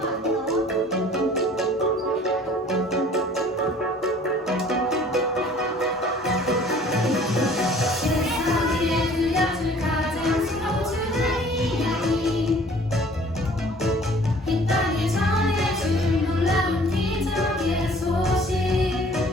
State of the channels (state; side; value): normal; both; correlation 0.52